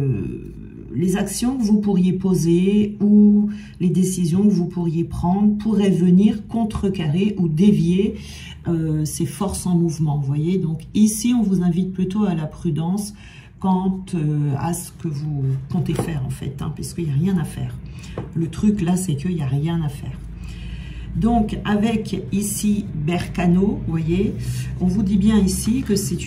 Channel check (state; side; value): identical; both; correlation 1.00